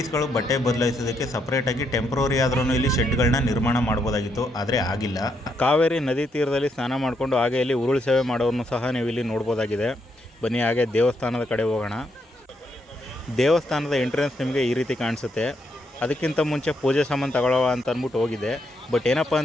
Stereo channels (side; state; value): both; normal; correlation 0.77